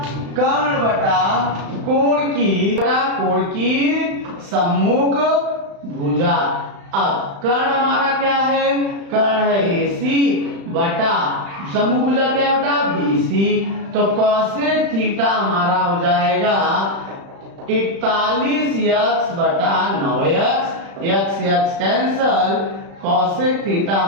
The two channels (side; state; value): left; late; 35 ms